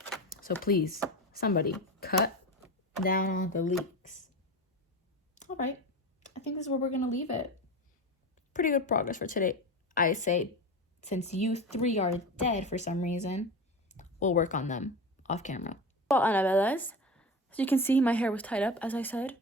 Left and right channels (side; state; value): both; normal; correlation 0.26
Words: So please somebody cut down on the leaks. All right, I think this is where we're gonna leave it. Pretty good progress for today, I say. Since you three are dead for some reason, we'll work on them off camera. Well, Annabellas, as you can see, my hair was tied up, as I said,